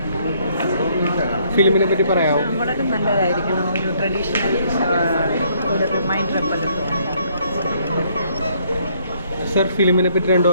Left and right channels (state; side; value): inverted; both; correlation -0.67